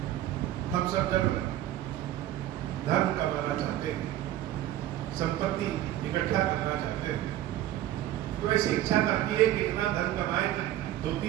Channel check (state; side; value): quieter; left; 13.4 dB